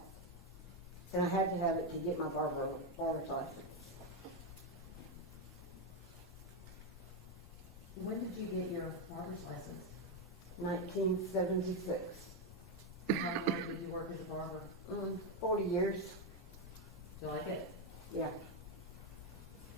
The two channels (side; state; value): both; normal; correlation 0.06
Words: And I had to have it to get my barber's license. When did you get your barber's license? 1976. How long did you work as a barber? 40 years, Do you like it? yeah.